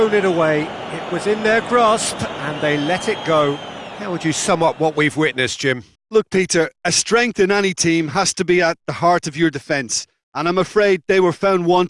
it away. It was in their grasp, and they let it go. How would you sum up what we've witnessed, Jim? Look, Peter, a strength in any team has to be at the heart of your defence, and I'm afraid they were found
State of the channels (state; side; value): identical; both; correlation 1.00